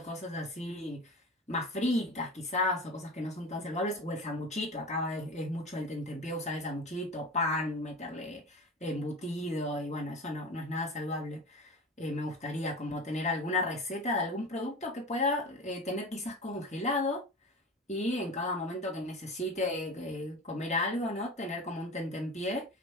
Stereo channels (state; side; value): normal; both; correlation 0.32